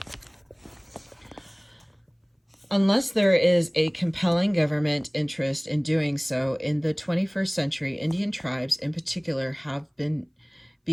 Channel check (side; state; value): both; identical; correlation 1.00